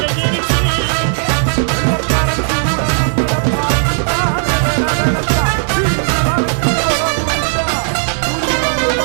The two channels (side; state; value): left; silent; 60 dB below the other